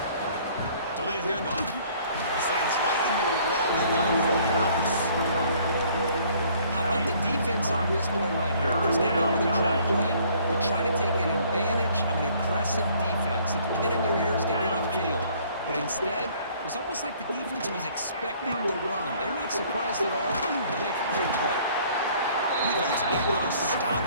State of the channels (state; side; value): inverted; both; correlation -0.58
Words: Delayed handoff. Sends right into a wall. They got it for yards. How about the defense on this play right here? Because they go with a draw play to try to take an advantage of an aggressive defense. It's pin in their ears to get upfield. But instead, it was almost like the defense was expecting the run. They're not surprised at all. They make a great play. Defense able to stop